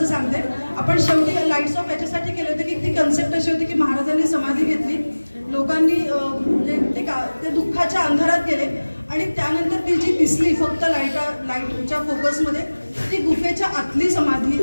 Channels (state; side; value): inverted; both; correlation -1.00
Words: सांगते. आपण शेवटी लाईट्स ऑफ याच्यासाठी केले होते की ती कन्सेप्ट अशी होती की महाराजांनी समाधी घेतली, लोकांनी म्हणजे ते दुःखाच्या अंधारात गेले आणि त्यानंतर ती जी दिसली फक्त लाईटच्या फोकसमध्ये, ती गुफेच्या आतली